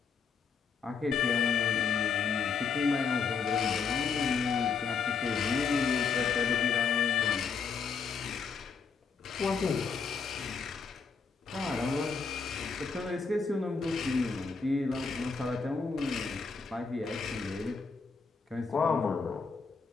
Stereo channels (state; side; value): quieter; right; 5.4 dB